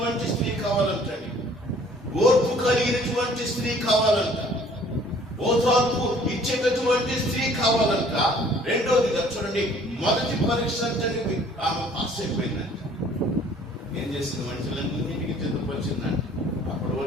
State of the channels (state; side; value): normal; both; correlation 0.55